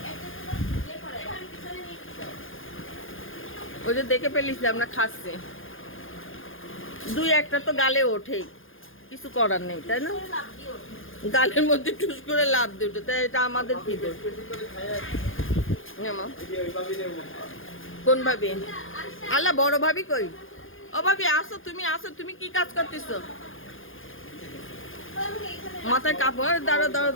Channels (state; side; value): late; right; 0.59 ms